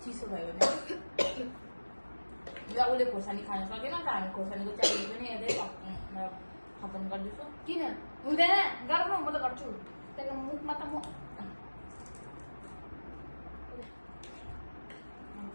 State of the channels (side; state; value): both; inverted; correlation -1.00